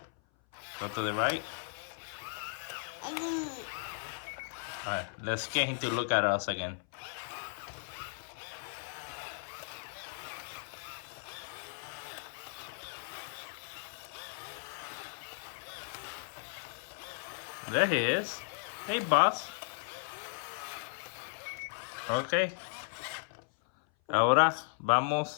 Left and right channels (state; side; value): silent; right; 54 dB below the other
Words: Go to the right. Alright, let's get him to look at us again. There he is. Hey, boss. Okay. Ahora